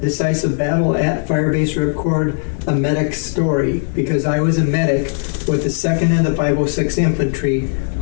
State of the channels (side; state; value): right; silent; 66 dB below the other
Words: Decisive Battle at Firebase Ripcord, a Medic's Story, because I was a medic with the 2nd and the 506 Infantry,